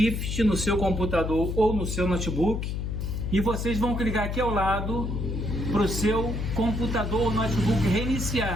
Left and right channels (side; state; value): left; noise; hum, 3 dB below the sound